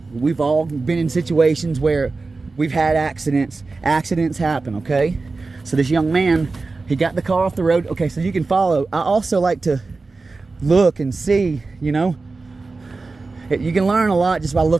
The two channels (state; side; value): quieter; left; 3.8 dB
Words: been in situations where we've had accidents. Accidents happen, okay? So this young man, he got the car off the road. Okay, so you can follow. I also like to look and see, you know. You can learn a lot just by